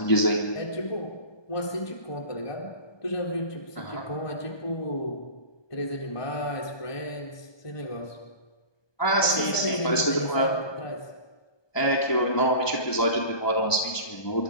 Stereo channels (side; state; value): right; late; 1.2 ms